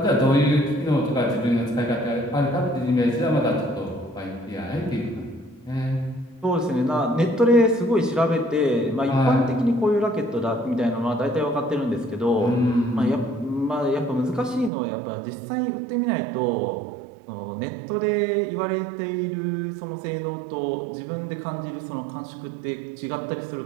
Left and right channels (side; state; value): left; drops out; at 14.7 s